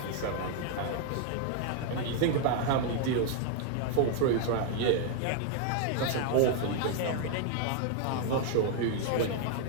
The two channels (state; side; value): different; both; correlation 0.00